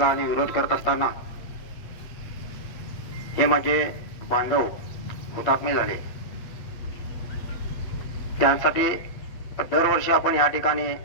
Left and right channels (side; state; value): right; late; 8.3 ms